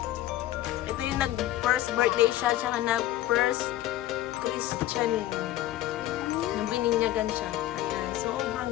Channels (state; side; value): quieter; right; 14.5 dB